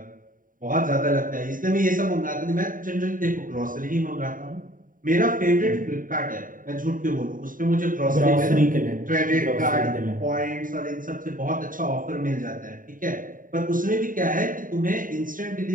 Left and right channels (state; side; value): late; left; 0.39 ms